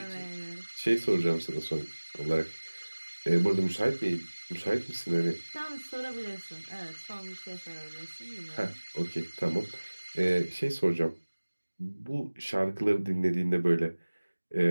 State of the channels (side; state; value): both; inverted; correlation -1.00